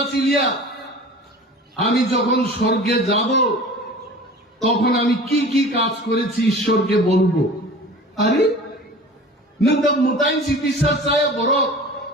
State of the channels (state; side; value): normal; both; correlation 0.40